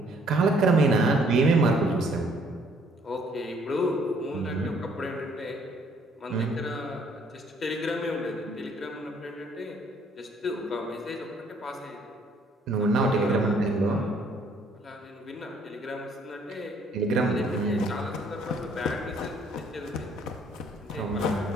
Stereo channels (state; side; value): normal; both; correlation 0.63